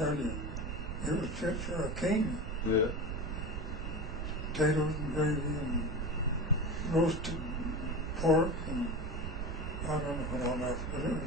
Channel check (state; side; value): noise; right; rumble, 3 dB below the sound